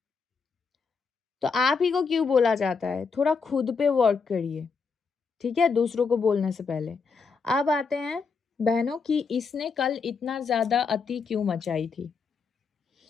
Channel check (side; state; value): right; quieter; 5.1 dB